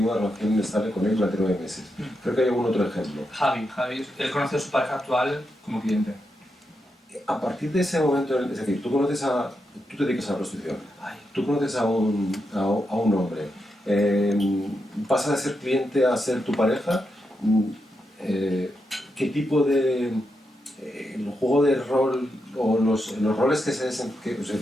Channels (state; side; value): normal; both; correlation 0.85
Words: una relación estable con él durante 9 meses. Creo que hay algún otro ejemplo. Javi, él conoce a su pareja actual como cliente. A partir de ese momento, es decir, tú te dedicas a la prostitución, tú conoces a un hombre, pasa de ser cliente a ser tu pareja, ¿qué tipo de el juego de rol o los roles que